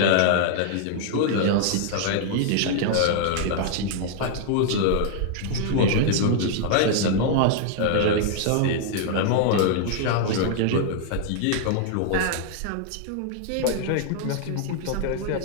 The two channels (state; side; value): different; both; correlation -0.01